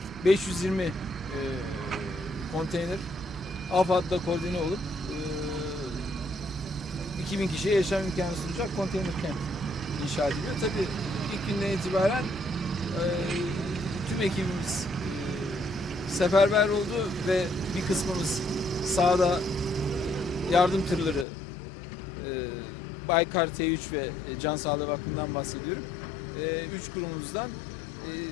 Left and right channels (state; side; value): drops out; right; at 21.2 s